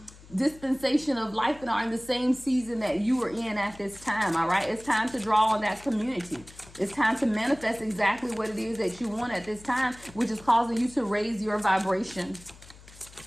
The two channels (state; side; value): noise; left; hum, 21 dB below the sound